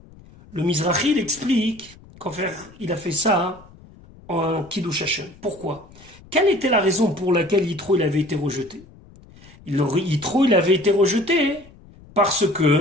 Le Mizrahi explique qu'en fait il a fait ça en Kiddush Hashem. Pourquoi? Quelle était la raison pour laquelle Yitro il avait été rejeté? Yitro il avait été rejeté parce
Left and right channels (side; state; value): left; noise; rumble, 23 dB below the sound